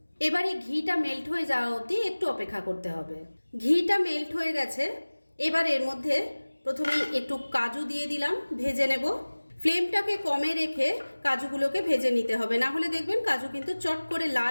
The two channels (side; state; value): both; inverted; correlation -1.00